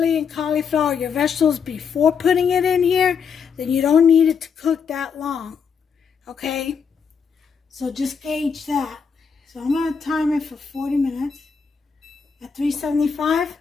and cauliflower, your vegetables before putting it in here, then you don't need it to cook that long, okay? So just gauge that. So I'm going to time it for 40 minutes at 375.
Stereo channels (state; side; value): quieter; right; 6.3 dB